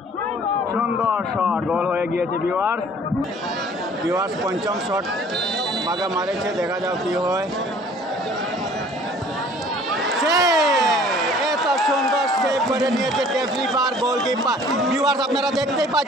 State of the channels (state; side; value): normal; both; correlation 0.52